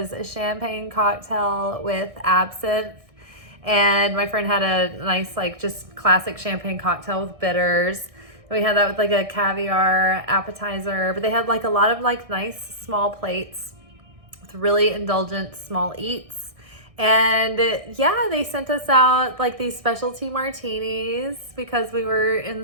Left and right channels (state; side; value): late; left; 1.6 ms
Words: a champagne cocktail with absinthe. And my friend had a nice, like, just classic champagne cocktail with bitters. And we had that with like a caviar appetizer, but they had like a lot of like nice small plates with really indulgent small eats. And yeah, they sent us out like these specialty martinis because we were in